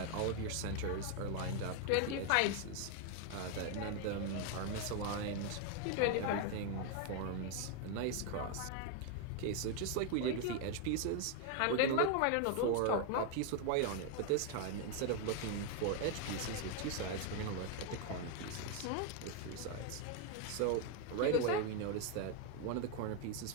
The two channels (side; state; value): both; different; correlation 0.01